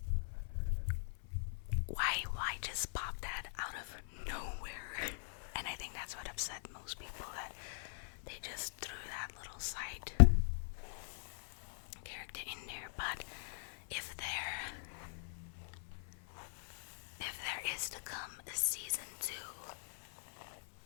why just pop that out of nowhere? And I think that's what upset most people, that they just threw that little side character in there. But if there is to come a season 2,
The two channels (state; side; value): silent; right; 50 dB below the other